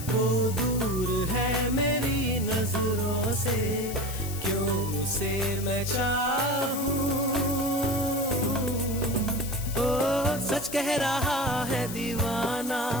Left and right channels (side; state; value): left; noise; hiss, 10 dB below the sound